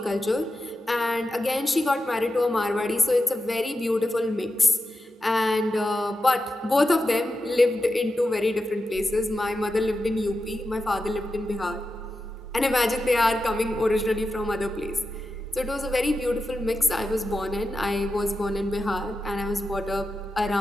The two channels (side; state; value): both; normal; correlation 0.90